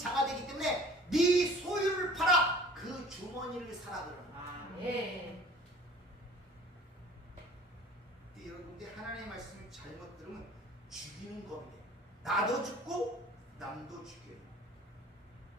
되기 때문에 네 소유를 팔아 그 주머니를 사라 그러는 거예요. 여러분들 하나님의 말씀을 잘못 들으면 죽이는 검이 돼요. 나도 죽고 남도 죽여요.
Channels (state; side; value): normal; both; correlation 0.48